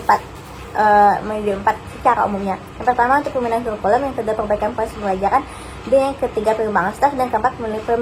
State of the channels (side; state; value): both; identical; correlation 1.00